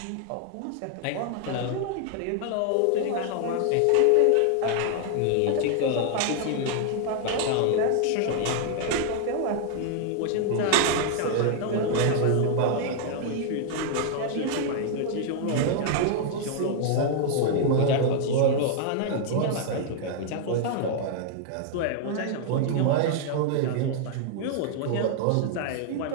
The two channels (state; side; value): different; both; correlation 0.00